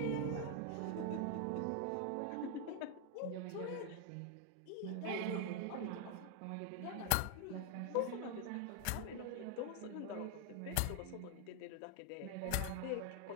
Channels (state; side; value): different; both; correlation 0.00